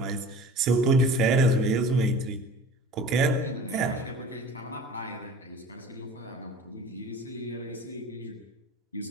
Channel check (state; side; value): normal; both; correlation 0.41